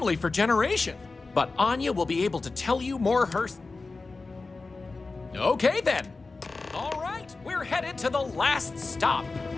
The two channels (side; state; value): right; quieter; 3.8 dB